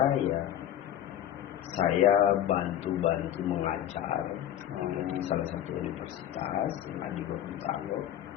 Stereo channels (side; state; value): right; quieter; 11.2 dB